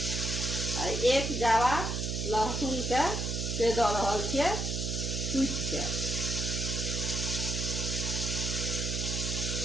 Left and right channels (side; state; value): right; noise; hum, 2 dB below the sound